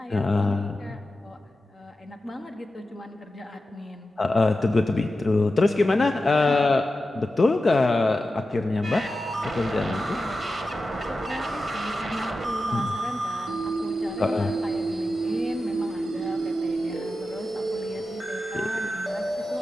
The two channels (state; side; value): normal; both; correlation 0.92